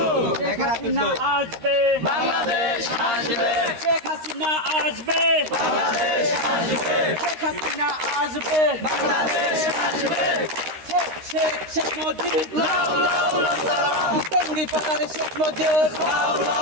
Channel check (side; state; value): left; late; 13 ms